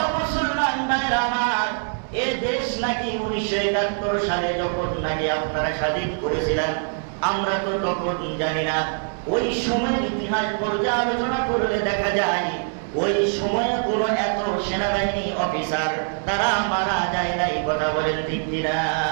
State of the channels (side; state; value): left; silent; 57 dB below the other